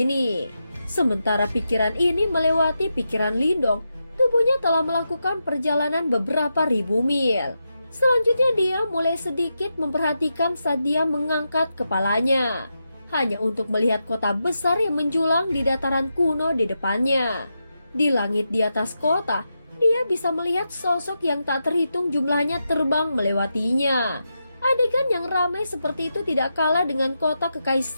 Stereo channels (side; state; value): both; inverted; correlation -0.87